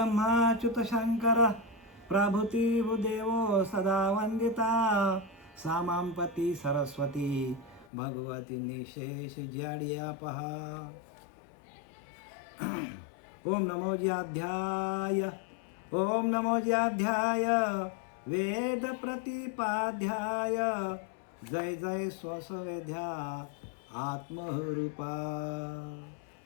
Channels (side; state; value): right; drops out; at 7.9 s